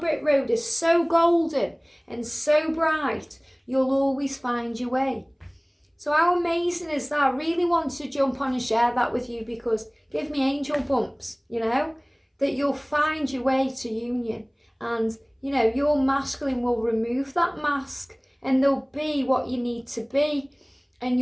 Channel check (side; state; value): both; identical; correlation 1.00